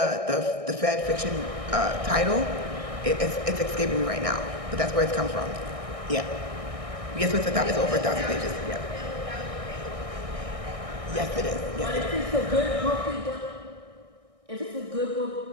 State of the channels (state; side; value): late; left; 1.6 ms